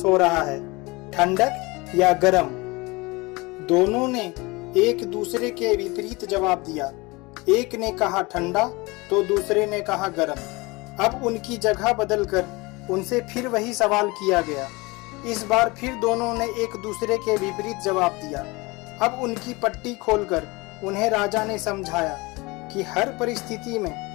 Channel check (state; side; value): quieter; right; 24.2 dB